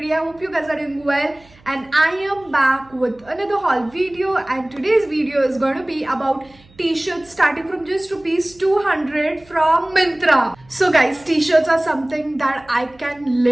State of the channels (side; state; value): right; noise; hum, 28 dB below the sound